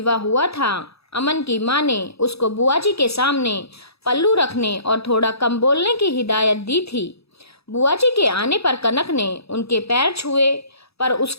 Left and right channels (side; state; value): right; late; 0.78 ms